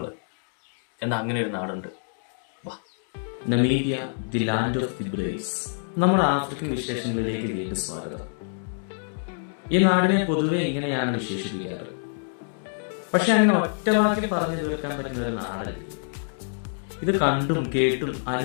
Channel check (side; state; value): right; silent; digital silence